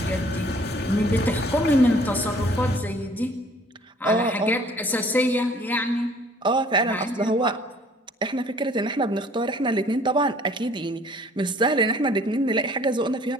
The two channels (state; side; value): normal; both; correlation 0.55